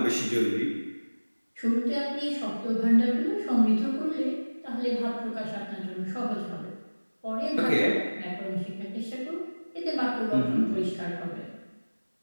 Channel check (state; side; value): inverted; both; correlation -1.00